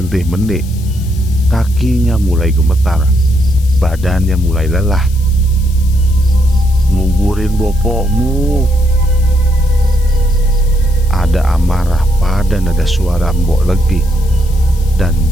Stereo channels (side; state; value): left; noise; hiss, 20 dB below the sound